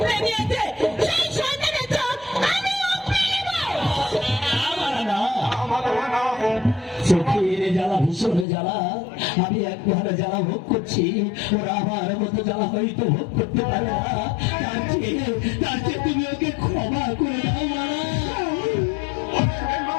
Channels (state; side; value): drops out; right; at 8.5 s